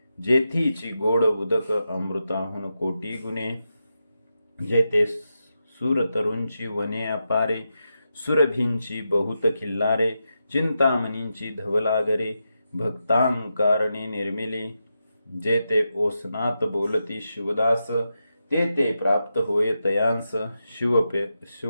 जेथीची गोड उदक अमृताहून कोटी गुणे. जेथे सुरतरूंची वने अपारे, सुरभींची बहुत खिल्लारे. चिंतामणींची धवलागरे, भक्तांकारणी निर्मिली. जेथे ओसनात बोलती शिवदास, ते प्राप्त होय तयांस.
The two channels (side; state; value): both; inverted; correlation -0.88